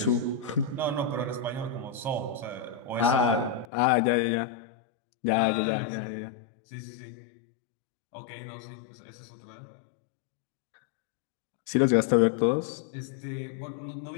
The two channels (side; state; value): right; drops out; at 3.7 s